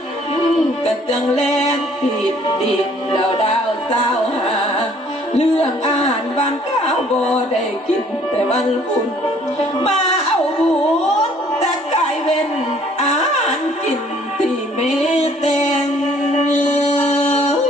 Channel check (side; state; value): both; normal; correlation 0.59